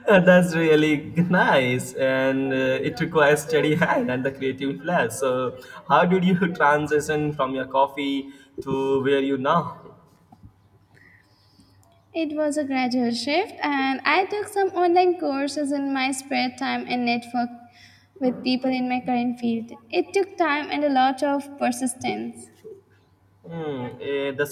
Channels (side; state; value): both; identical; correlation 1.00